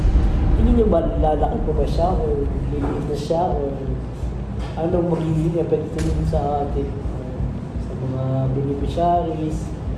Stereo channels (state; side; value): identical; both; correlation 1.00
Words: Hindi nyo ba lalaki po ba siya o liliit na siya o anong magiging epekto nun sa atin sa mga beneficiaries?